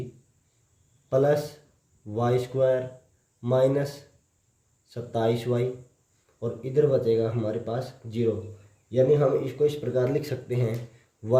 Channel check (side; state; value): both; identical; correlation 1.00